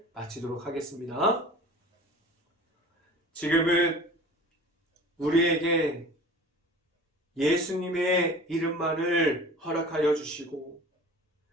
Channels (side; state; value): both; normal; correlation 0.41